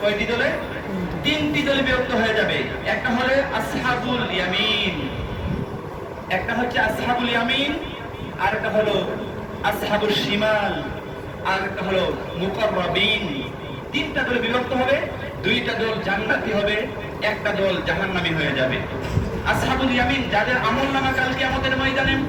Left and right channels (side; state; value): both; identical; correlation 1.00